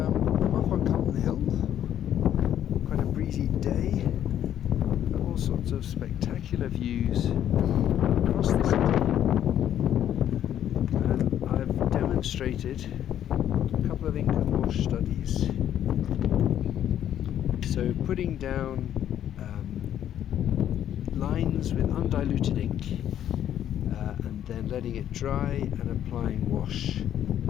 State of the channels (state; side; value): quieter; right; 10.7 dB